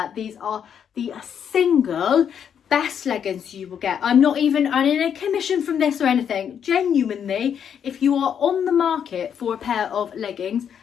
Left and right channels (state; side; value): quieter; right; 8.2 dB